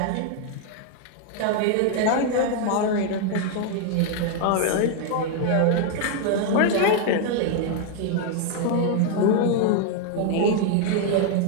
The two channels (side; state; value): both; different; correlation 0.00